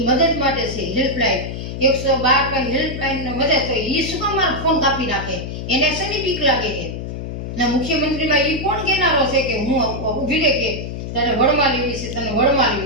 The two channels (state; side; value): noise; left; hum, 7 dB below the sound